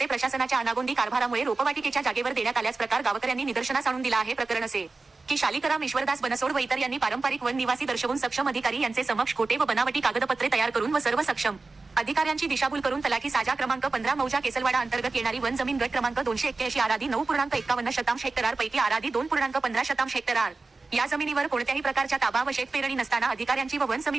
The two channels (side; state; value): left; quieter; 3.7 dB